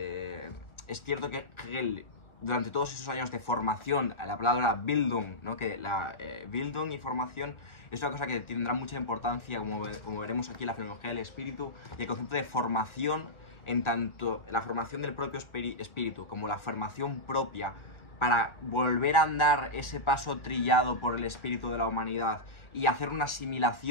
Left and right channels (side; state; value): right; late; 1.7 ms